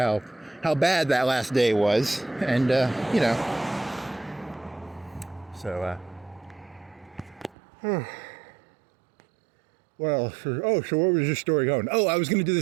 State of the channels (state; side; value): drops out; left; at 7.6 s